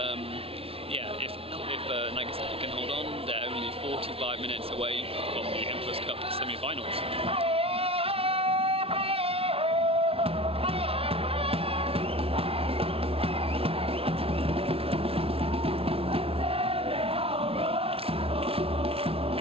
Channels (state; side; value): late; left; 0.27 ms